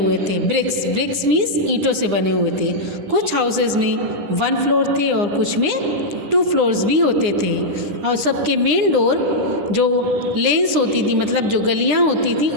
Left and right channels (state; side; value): late; left; 9.8 ms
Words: थे। ब्रिक्स मीन्स ईंटों से बने हुए थे। कुछ हाउसेस में 1 फ्लोर थे और कुछ में 2 फ्लोर्स भी होते थे और सबके मेन डोर जो लेन्स होती थी, मतलब जो गलियां होती थी,